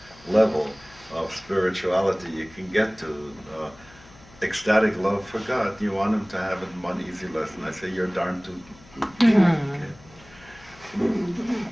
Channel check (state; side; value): noise; left; hum, 24 dB below the sound